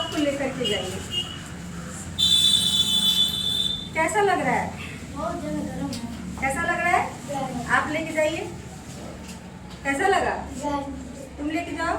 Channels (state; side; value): identical; both; correlation 1.00